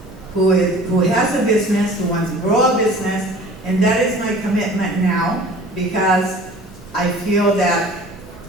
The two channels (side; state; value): both; normal; correlation 0.45